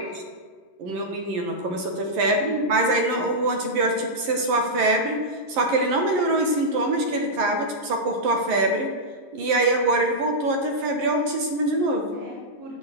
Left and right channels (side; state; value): left; late; 11 ms